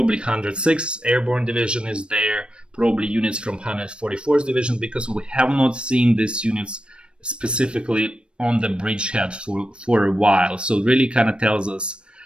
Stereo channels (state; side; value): late; left; 0.056 ms